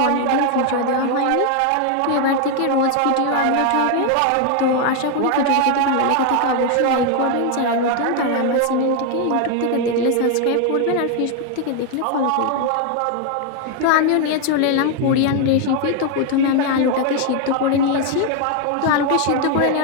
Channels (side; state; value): both; different; correlation 0.01